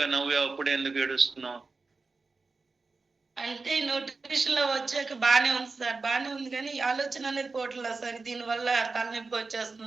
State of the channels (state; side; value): quieter; left; 4.0 dB